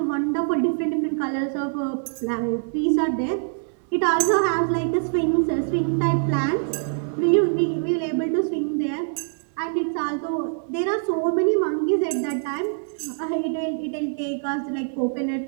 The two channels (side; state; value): left; silent; digital silence